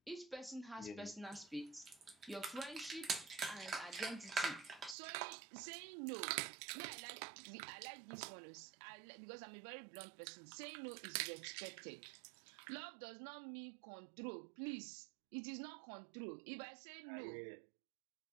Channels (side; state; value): left; drops out; at 5.0 s